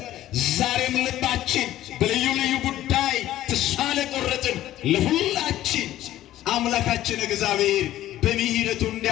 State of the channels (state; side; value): quieter; right; 13.7 dB